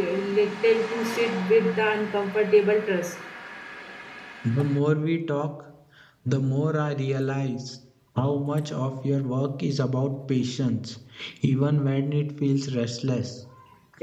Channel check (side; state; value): both; identical; correlation 1.00